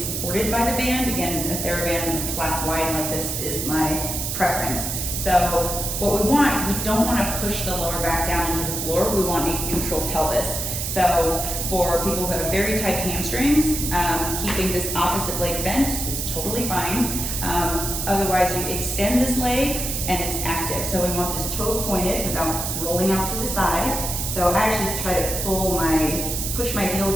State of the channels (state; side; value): noise; right; hiss, 3 dB below the sound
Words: by the band. Again, the TheraBand flat wide like this is my preference. So what we don't want to push the lower back down into the floor. We want a neutral pelvis. So for people who have very tight hamstrings, keeping this opposite leg bent is totally fine. Otherwise, you extend this leg and it's active. So we want this toe pointed without rolling out to the side. So I actually try to push my heel